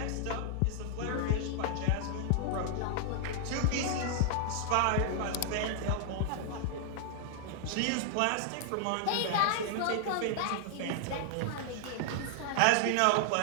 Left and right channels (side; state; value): both; different; correlation 0.00